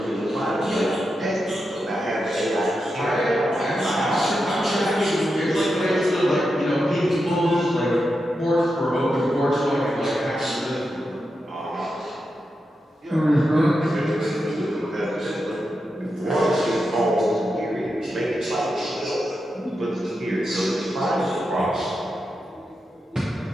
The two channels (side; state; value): both; normal; correlation 0.88